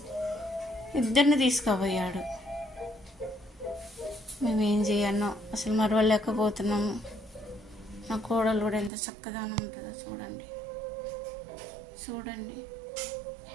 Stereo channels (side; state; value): left; drops out; at 8.9 s